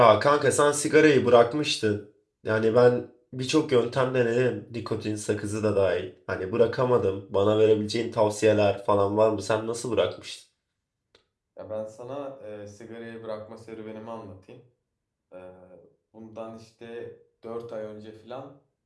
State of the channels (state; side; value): identical; both; correlation 1.00